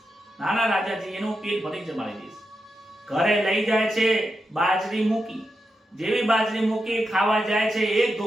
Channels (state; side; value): normal; both; correlation 0.87